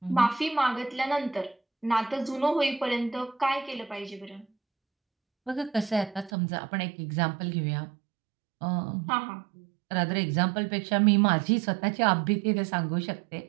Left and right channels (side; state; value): left; drops out; at 6.3 s